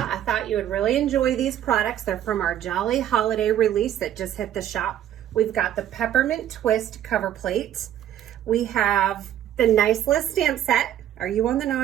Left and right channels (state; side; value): quieter; left; 11.2 dB